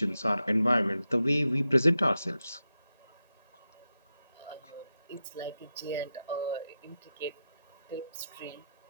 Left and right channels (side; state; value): both; inverted; correlation -0.89